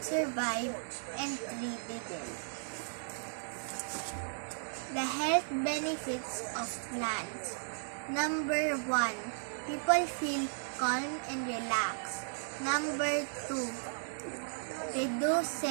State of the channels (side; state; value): left; silent; digital silence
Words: survived and 3 didn't. The health benefits of plants. Number 1, people feel calm and relaxed. Number 2,